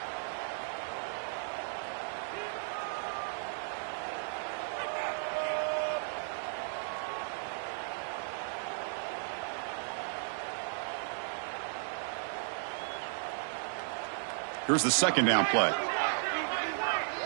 Here's the 2nd down play.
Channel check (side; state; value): left; silent; digital silence